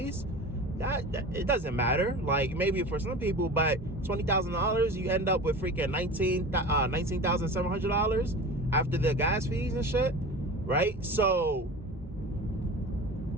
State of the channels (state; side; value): normal; both; correlation 0.34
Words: That it doesn't matter. Like, maybe for some people, but $20,000, you end up with freaking $19,700 after the gas fees and shit, right? So